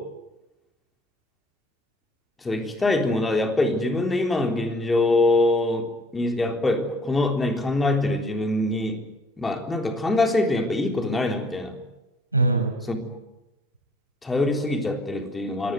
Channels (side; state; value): both; normal; correlation 0.58